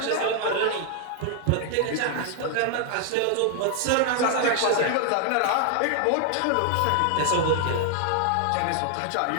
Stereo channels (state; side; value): different; both; correlation 0.00